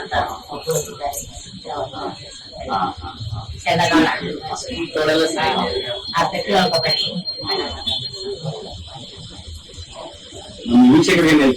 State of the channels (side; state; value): both; identical; correlation 1.00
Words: ಚೆನ್ನಾಗ ಅತ್ತ ಕೇಳ್ಕೊ ಬನ್ನಿ. ನಮ್ಮ ವೀಕ್ಷಕರಿಗೆ ಏನ್